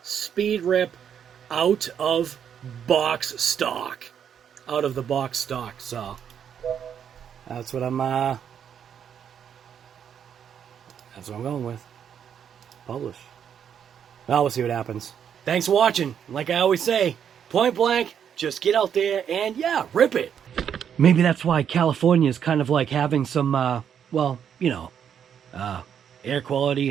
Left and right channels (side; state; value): left; quieter; 8.4 dB